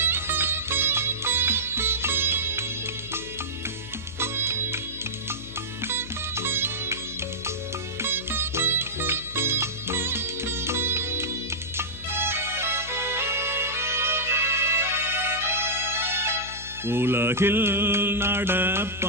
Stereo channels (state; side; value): noise; left; hum, 15 dB below the sound